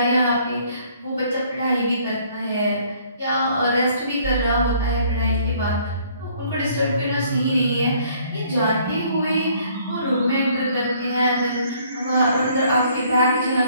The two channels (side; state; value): both; inverted; correlation -0.61